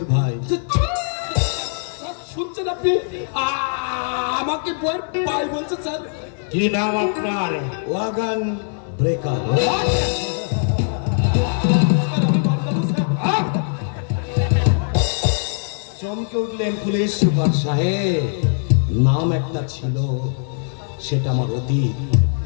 ভাই। শুনছেন আপনি? আমাকে বইয়ের পাই বলছে স্যার। কি নাম আপনার? Wagon breaker. চমকে উঠলেন পুলিশ সুপার সাহেব। নাম একটা ছিল, সেটা আমার অতীত।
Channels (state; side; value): silent; right; 65 dB below the other